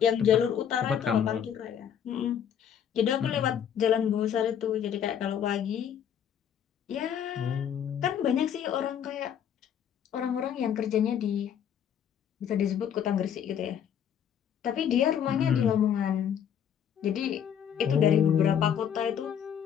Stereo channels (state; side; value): quieter; right; 8.8 dB